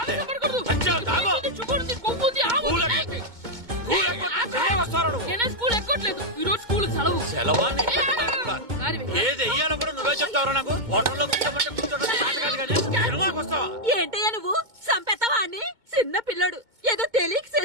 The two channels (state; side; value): late; left; 2.2 ms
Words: నేనే స్కూల్ ఎక్కట్లేదు, ఈ రోజు స్కూల్ సెలవు. సెలవా? ఏది వెయ్యాలో కూడా నువ్వే చెప్తావరా నాకు? హోటల్లో సినిమాకి వస్తావా? ఏంటయ్యా నువ్వు? సంపెత్తవా అని? చిన్న పిల్లడు ఏదో తెలియక